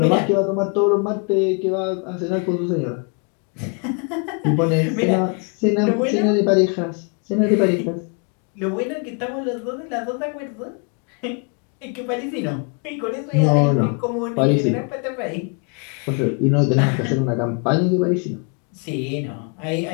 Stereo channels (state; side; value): quieter; right; 36.3 dB